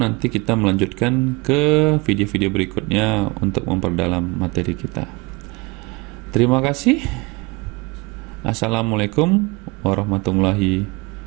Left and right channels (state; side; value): quieter; left; 26.0 dB